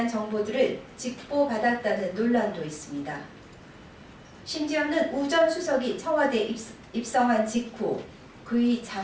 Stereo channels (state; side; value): identical; both; correlation 1.00